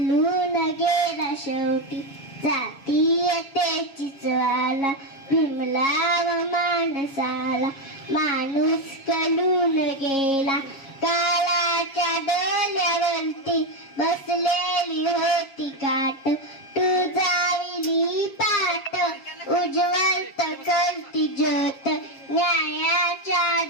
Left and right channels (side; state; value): right; late; 7.3 ms